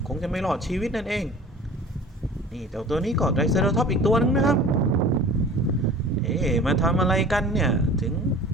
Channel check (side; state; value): both; normal; correlation 0.43